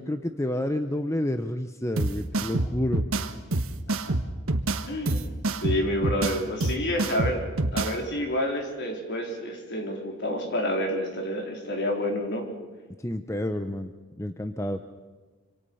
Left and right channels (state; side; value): normal; both; correlation 0.49